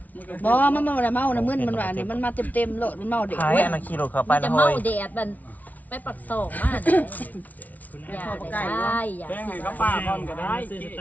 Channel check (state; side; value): late; right; 0.075 ms